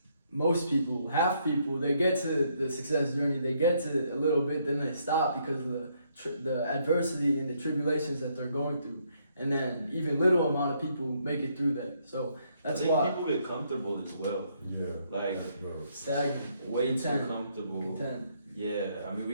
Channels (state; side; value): inverted; both; correlation -0.72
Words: most people, half people, they get to the success journey, they get to a little bit, then they stop because of the adversity and the tribulations that they're going through. And then even little amount of people make it through that. So that's why people get comfortable as well. Yeah. Like stagnant. Way too comfortable. Content. Yeah, we